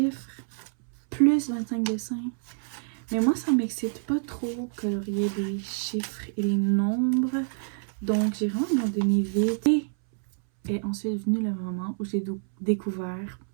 plus 25 dessins. Mais moi, ça m'excite pas trop colorier les chiffres et les nombres. Donc, j'ai vraiment abandonné vite. Et est ensuite venu le moment où j'ai découvert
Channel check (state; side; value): silent; left; 60 dB below the other